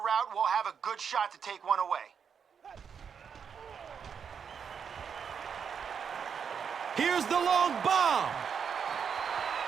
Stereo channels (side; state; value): left; quieter; 6.9 dB